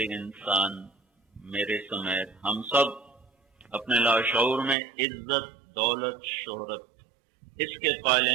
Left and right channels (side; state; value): left; drops out; at 4.8 s